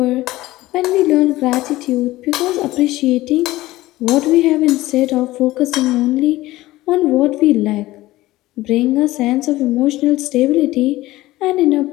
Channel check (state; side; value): quieter; right; 17.4 dB